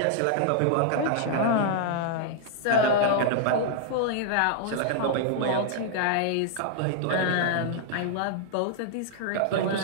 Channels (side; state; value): both; different; correlation -0.01